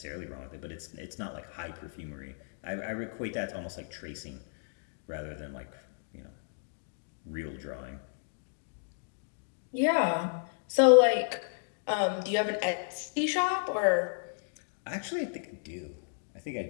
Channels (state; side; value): silent; right; digital silence